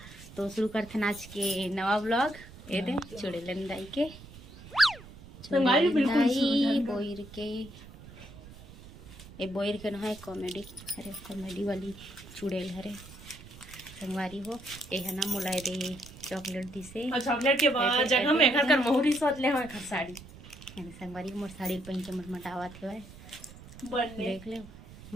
तो शुरू करते हैं आज के नवा ब्लॉग। ये दे चुड़ेलन दाई के बोयर के बोयर के ना कॉमेडी अरे कॉमेडी वाली चुड़ेल हरे संगवारी हो। ये है ना मुलाय दे चॉकलेट दिसे चॉकलेट के बाद जगह में घर कर मोहरी सोच ले हम घर साड़ी संगवारी मोर साड़ी पहन के मटमटावत है देख ले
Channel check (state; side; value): noise; right; rumble, 18 dB below the sound